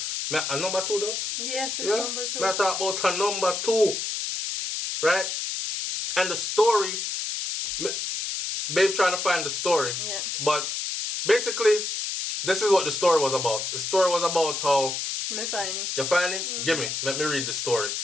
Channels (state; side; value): noise; left; hiss, 3 dB below the sound